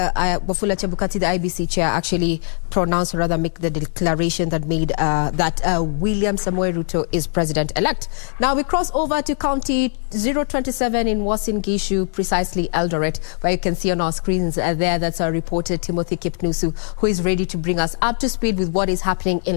Chebukati, the IBC chair, actually pronounce, or rather make the declaration that made that William Samoei Ruto is president-elect. Now we cross over to County 027 in Uasin Gishu, precisely Eldoret, where you can see on our screens there, that's our reporter Timothy Kipnusu, who is ready to bring us up to speed with what is happening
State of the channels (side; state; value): right; silent; 65 dB below the other